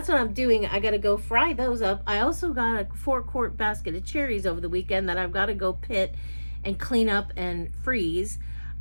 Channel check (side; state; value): both; inverted; correlation -1.00